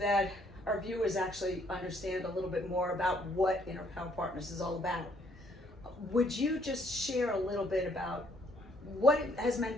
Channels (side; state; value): both; normal; correlation 0.66